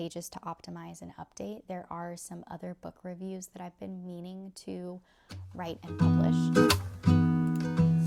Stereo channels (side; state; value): both; identical; correlation 1.00